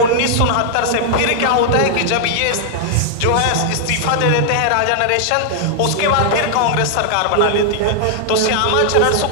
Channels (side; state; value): both; different; correlation 0.00